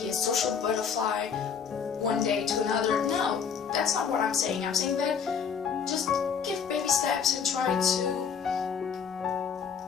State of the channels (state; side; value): quieter; right; 6.9 dB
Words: be a social butterfly one day to another. No, that's not what I'm saying. I'm saying that just give baby steps and try to